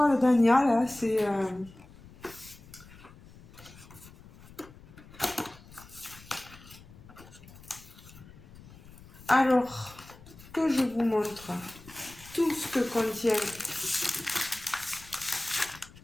d'Anya, là. C'est... Alors, que je vous montre tout ce que contient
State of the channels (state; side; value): noise; left; rumble, 20 dB below the sound